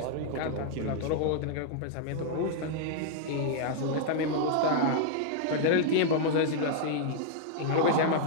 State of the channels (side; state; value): both; different; correlation -0.01